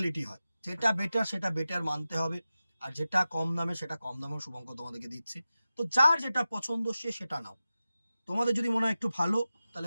হয়, যেটা বেটার সেটা বেটার মানতে হবে। আর যেটা কম দামে সেটা কম দামেও শুভঙ্কর তোমাদেরকে দিচ্ছে। তো যার যেটা পছন্দ সে সেটা নাও। তোমাদের যদি মনে হয় একটু ভালো,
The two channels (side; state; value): both; inverted; correlation -0.94